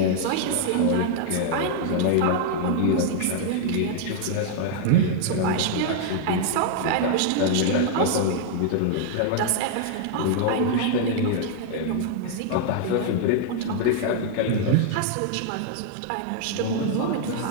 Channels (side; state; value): both; different; correlation 0.00